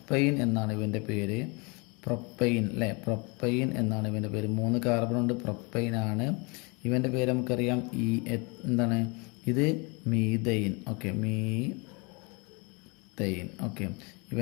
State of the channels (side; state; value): right; quieter; 29.8 dB